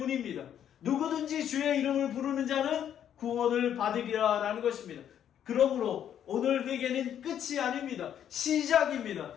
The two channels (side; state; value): right; quieter; 9.7 dB